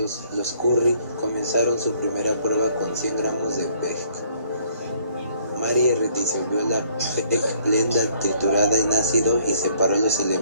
los Curie comenzaron su primera prueba con 100 gramos de PEG. Marie disolvió la PEG blenda triturada en ácido y separó los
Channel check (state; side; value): inverted; both; correlation -0.62